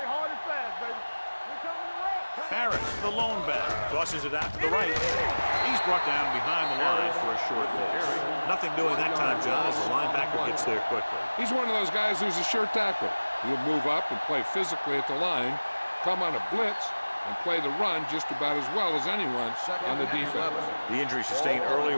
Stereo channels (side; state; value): both; inverted; correlation -1.00